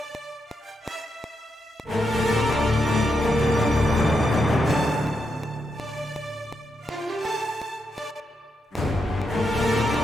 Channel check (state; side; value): normal; both; correlation 0.83